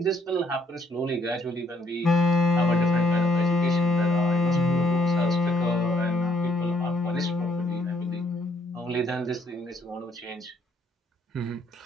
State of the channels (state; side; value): normal; both; correlation 0.68